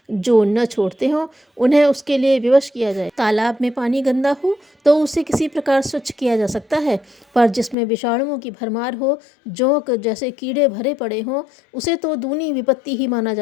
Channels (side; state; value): right; drops out; at 7.8 s